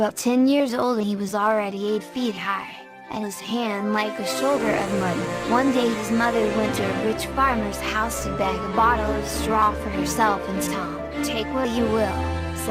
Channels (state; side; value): identical; both; correlation 1.00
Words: 10 years old he was already 8 feet high, and his hand like a shoulder of mud. One day his mother went to a rich farmer's house to beg a bottle of straw for herself and Tom. "Take what you will,"